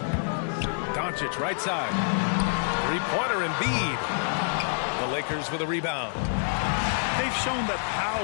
Doncic right side. 3-pointer Embiid. The Lakers with a rebound. They've shown that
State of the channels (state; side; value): silent; right; digital silence